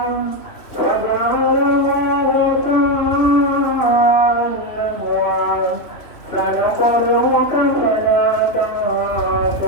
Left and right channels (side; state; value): right; late; 3.1 ms